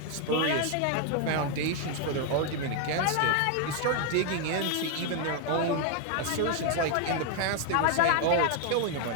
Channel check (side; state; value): both; different; correlation 0.00